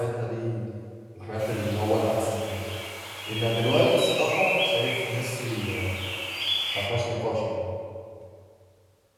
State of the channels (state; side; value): identical; both; correlation 1.00